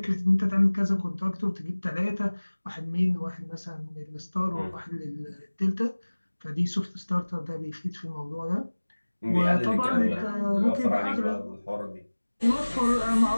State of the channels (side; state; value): both; inverted; correlation -1.00